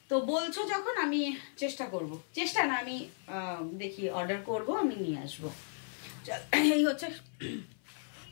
তো বলছো যখন, আমি চেষ্টা করব, চেষ্টা না আমি দেখি অর্ডার করব, আমি নিয়ে আসবো। এই হচ্ছে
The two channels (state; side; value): silent; right; 55 dB below the other